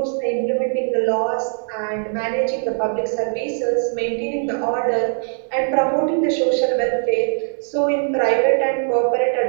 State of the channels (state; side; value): silent; left; 63 dB below the other